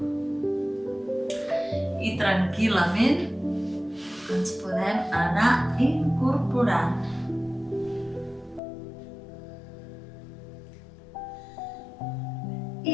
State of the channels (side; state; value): right; drops out; at 8.6 s